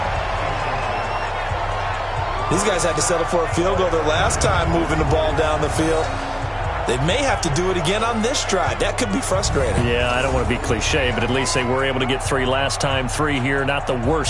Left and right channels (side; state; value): both; identical; correlation 1.00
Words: These guys had to settle for a field goal their last time moving the ball down the field. They may have to do it again on this drive. That could be frustrating. Yeah, I don't want to be cliche, but at least they were able to get 3 last time. 3 here, not the